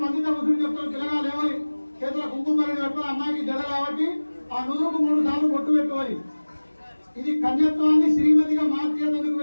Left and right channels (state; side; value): inverted; both; correlation -1.00